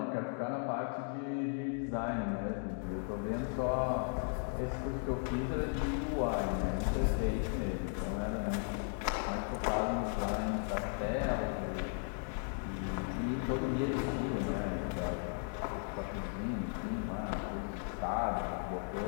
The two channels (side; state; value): right; silent; 54 dB below the other